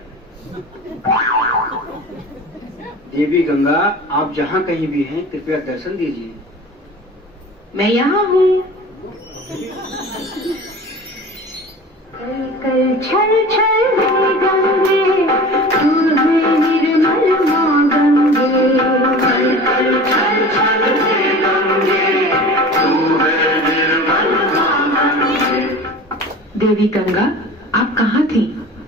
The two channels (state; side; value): normal; both; correlation 0.38